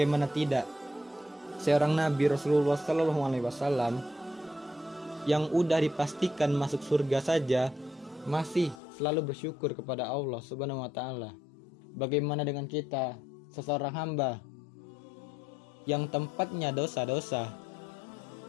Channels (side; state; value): right; drops out; at 8.8 s